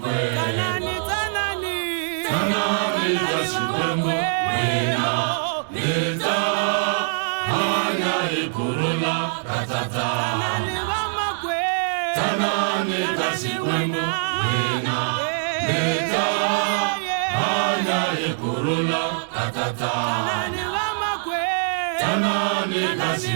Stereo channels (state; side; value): silent; left; digital silence